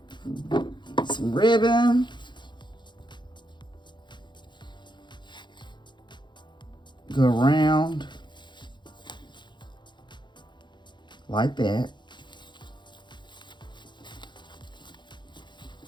Some ribbon. Go around like that.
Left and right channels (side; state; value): right; late; 0.22 ms